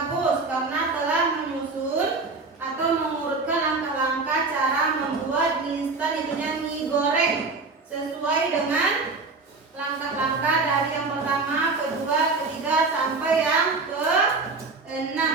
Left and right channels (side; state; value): left; quieter; 3.9 dB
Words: karena telah menyusun atau mengurutkan langkah-langkah cara membuat mie instan, itunya mie goreng, sesuai dengan langkah-langkah dari yang pertama, kedua, ketiga sampai yang ke-6.